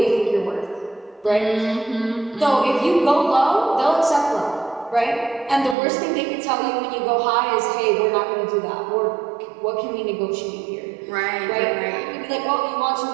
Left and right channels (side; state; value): left; drops out; at 5.8 s